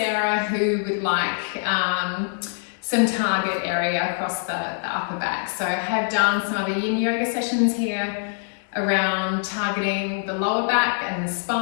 who would like some target area across the upper back. So I have done some other yin yoga sessions here around targeting the lower back and the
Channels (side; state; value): right; silent; digital silence